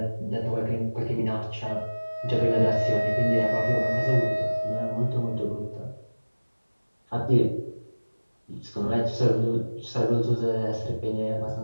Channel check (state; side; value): inverted; both; correlation -1.00